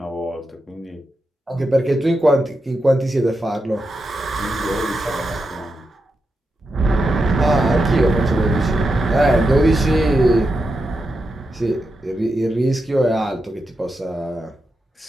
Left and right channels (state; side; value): normal; both; correlation 0.87